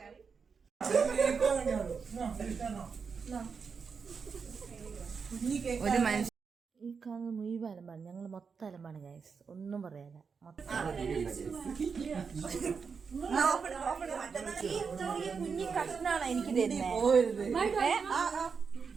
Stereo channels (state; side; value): quieter; left; 5.6 dB